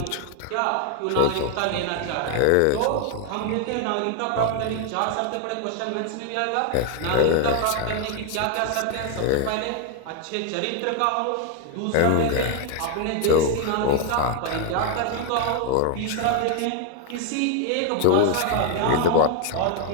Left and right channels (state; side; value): different; both; correlation 0.00